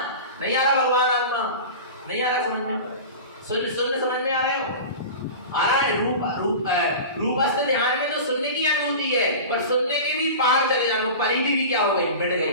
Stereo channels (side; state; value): both; inverted; correlation -0.32